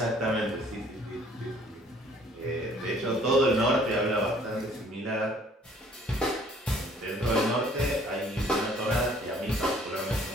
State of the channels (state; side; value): normal; both; correlation 0.58